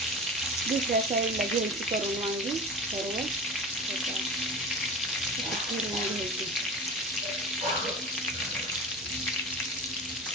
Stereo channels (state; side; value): normal; both; correlation 0.32